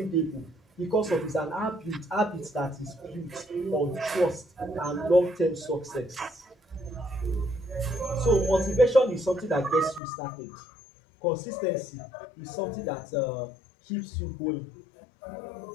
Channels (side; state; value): right; drops out; at 10.0 s